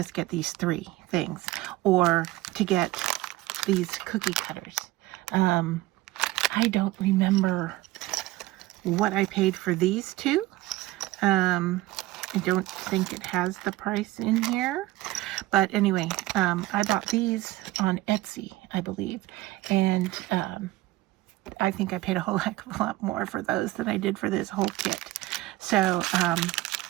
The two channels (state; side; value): quieter; left; 17.8 dB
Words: get these 3 things, or to get these cookie cutters. I don't remember what I paid for these 2. I don't think it has the price in here. But anyway, I bought these on Etsy, I believe. And I think I paid a whole heck of a lot more for those than I did for this whole kit. So,